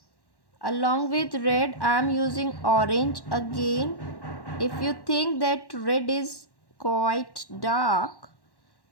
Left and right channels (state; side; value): late; right; 1.1 ms